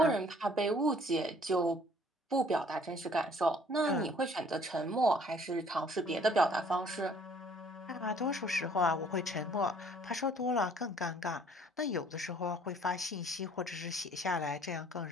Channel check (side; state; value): both; normal; correlation 0.57